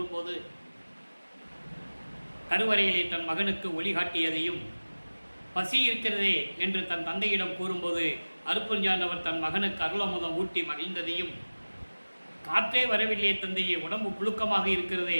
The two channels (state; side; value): inverted; both; correlation -1.00